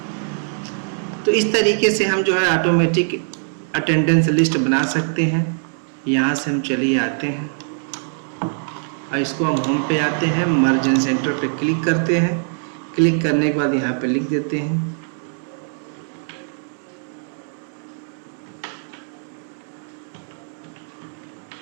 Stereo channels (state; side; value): silent; left; digital silence